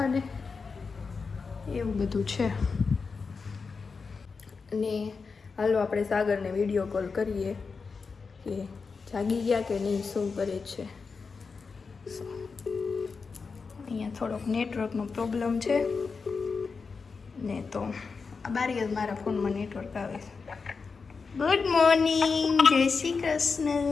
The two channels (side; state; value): right; quieter; 4.9 dB